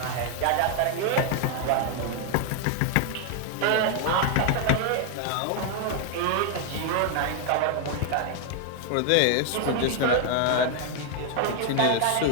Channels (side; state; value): both; different; correlation 0.00